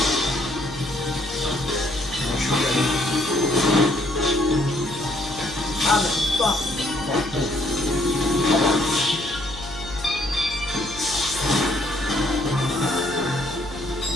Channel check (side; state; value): left; noise; hum, 15 dB below the sound